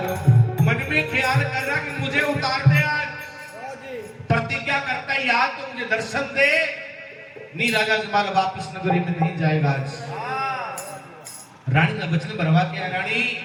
मन में ख्याल कर रहा कि मुझे उतार दे, आज प्रतिज्ञा करता है याद तो मुझे दर्शन दे, नहीं राजा जमाल वापिस नगरी में नहीं जाएगा। आज रानी ने वचन भरवा के, रानी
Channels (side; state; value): both; identical; correlation 1.00